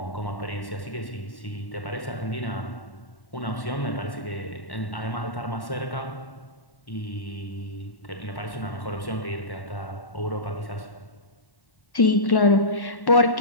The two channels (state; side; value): late; right; 1.1 ms